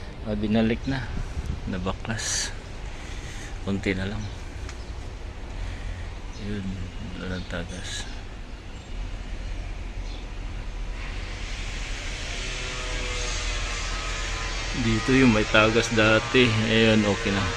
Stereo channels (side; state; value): both; identical; correlation 1.00